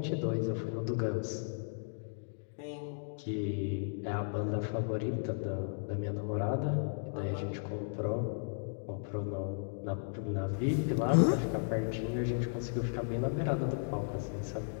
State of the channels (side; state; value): right; silent; digital silence